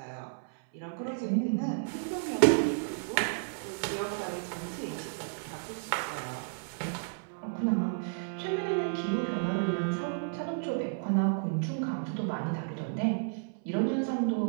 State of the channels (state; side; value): silent; left; 56 dB below the other